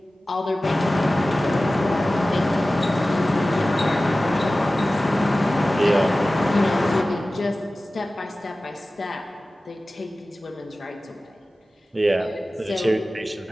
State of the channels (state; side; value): normal; both; correlation 0.96